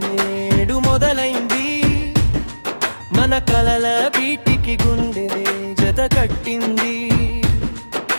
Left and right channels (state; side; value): inverted; both; correlation -1.00